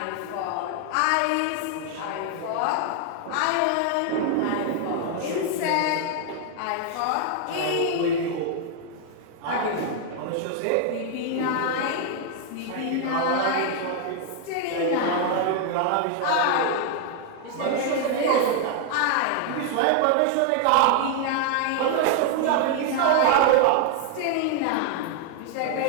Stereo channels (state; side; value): different; both; correlation 0.00